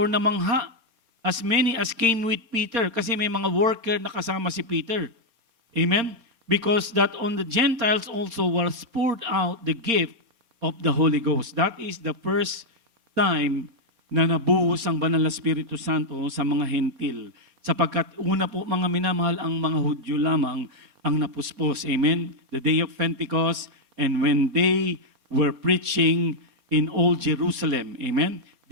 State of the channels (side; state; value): left; late; 4.3 ms